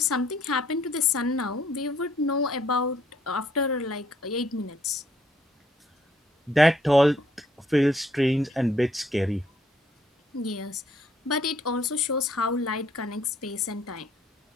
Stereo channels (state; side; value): normal; both; correlation 0.67